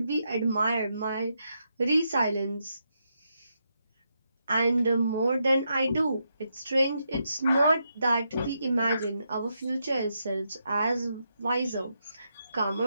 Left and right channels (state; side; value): inverted; both; correlation -0.82